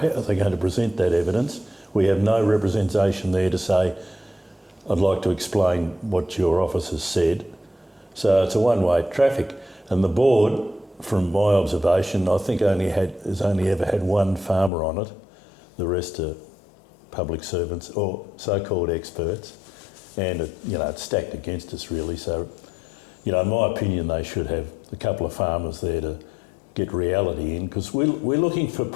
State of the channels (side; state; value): right; drops out; at 14.7 s